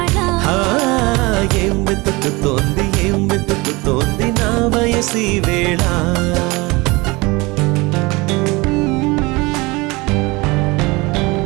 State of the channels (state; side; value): quieter; left; 24.0 dB